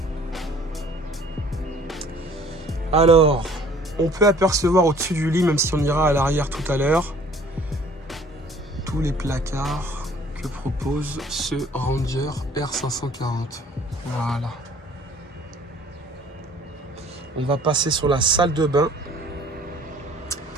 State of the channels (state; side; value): normal; both; correlation 0.54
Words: Alors, on peut apercevoir au-dessus du lit, même si on ira à l'arrière tout à l'heure, tous les placards que propose ce Ranger R540. Voilà. On va passer sur la salle de bain